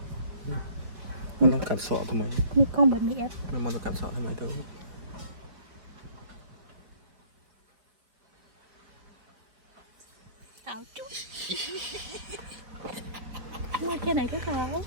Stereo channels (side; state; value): left; late; 4.8 ms